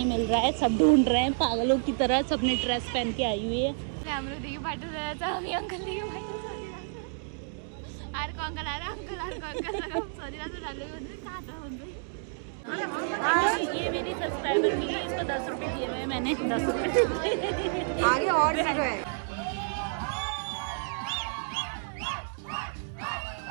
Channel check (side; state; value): left; silent; digital silence